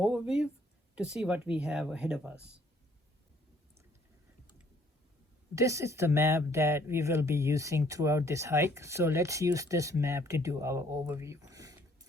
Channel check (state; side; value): normal; both; correlation 0.63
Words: to see what we have ahead of us. This is the map that we will be using throughout this hike. So let's use this map to do our overview.